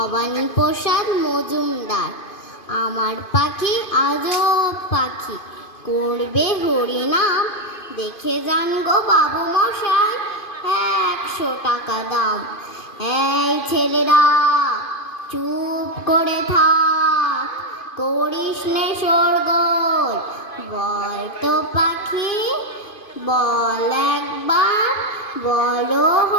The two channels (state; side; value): late; right; 2.5 ms